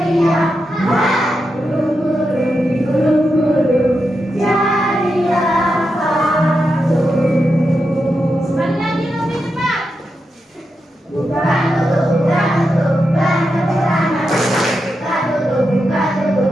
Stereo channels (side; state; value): both; normal; correlation 0.87